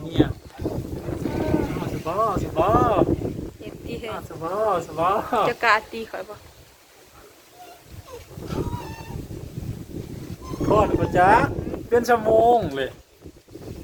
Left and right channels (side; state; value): both; identical; correlation 1.00